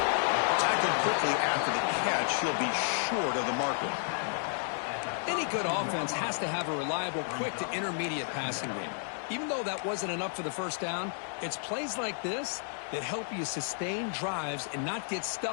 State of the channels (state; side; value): silent; right; digital silence